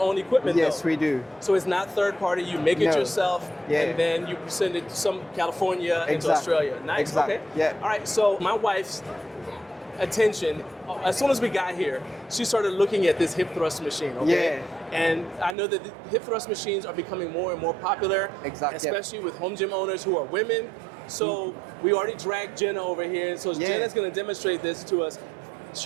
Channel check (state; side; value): drops out; left; at 15.6 s